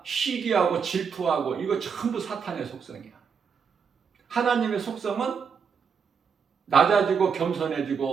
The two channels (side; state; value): left; quieter; 6.3 dB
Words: 시기하고 질투하고 이거 전부 사탄의 속성이야. 하나님의 속성은 낮아지고